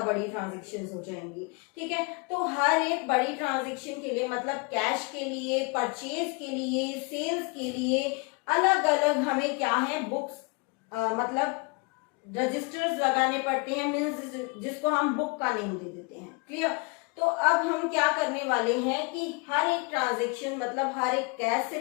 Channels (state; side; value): quieter; right; 30.0 dB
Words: बड़ी ट्रांजेक्शन्स हो जाएंगी। ठीक है, तो हर एक बड़ी ट्रांजेक्शन के लिए, मतलब कैश के लिए, परचेज के लिए, सेल्स के लिए अलग अलग हमें क्या है, बुक्स मतलब रजिस्टर्स लगाने पड़ते हैं, मीन्स जिसको हम बुक का नेम दे देते हैं। क्लियर? तो अब हम क्या करने वाले हैं कि हर एक ट्रांजेक्शन, मतलब हर एक कैश से